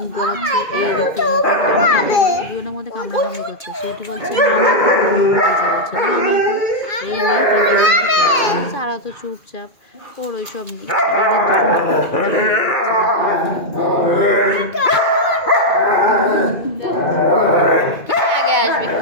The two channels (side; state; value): right; late; 2.5 ms